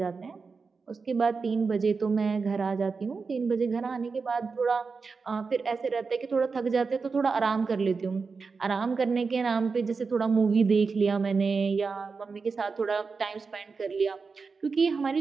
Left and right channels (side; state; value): left; quieter; 4.8 dB